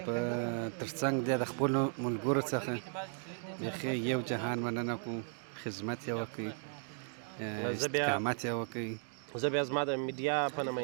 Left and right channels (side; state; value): left; silent; 54 dB below the other